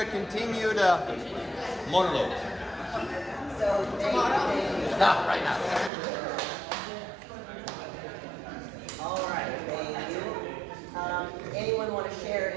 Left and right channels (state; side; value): drops out; left; at 5.9 s